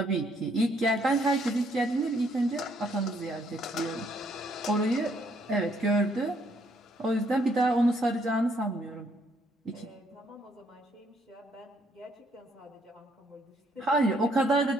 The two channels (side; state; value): both; normal; correlation 0.69